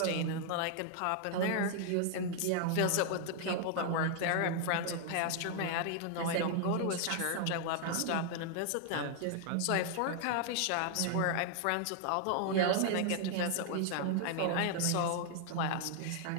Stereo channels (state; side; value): different; both; correlation 0.00